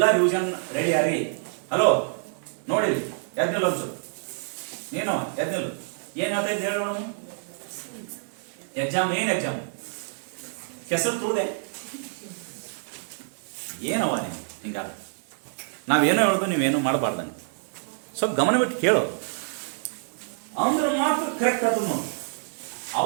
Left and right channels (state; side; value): silent; left; digital silence